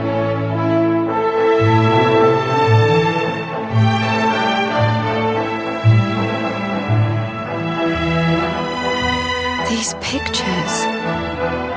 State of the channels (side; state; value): both; identical; correlation 1.00